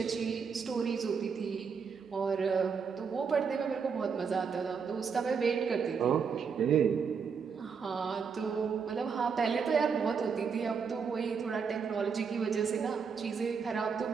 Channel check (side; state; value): left; quieter; 6.0 dB